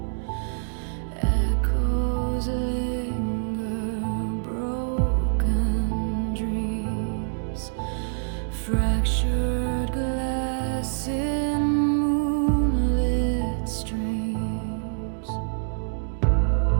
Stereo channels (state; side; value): silent; left; digital silence